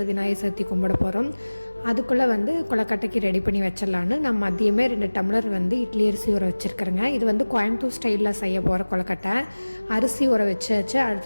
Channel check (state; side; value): inverted; both; correlation -1.00